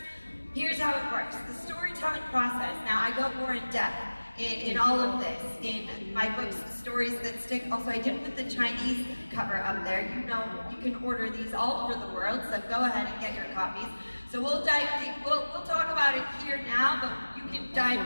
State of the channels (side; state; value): both; inverted; correlation -1.00